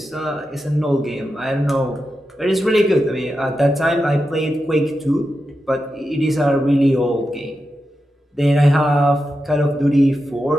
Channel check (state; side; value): normal; both; correlation 0.89